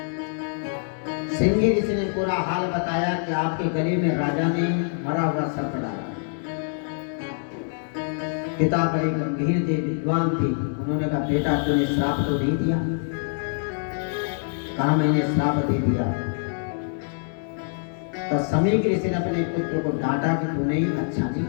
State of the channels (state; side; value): silent; right; digital silence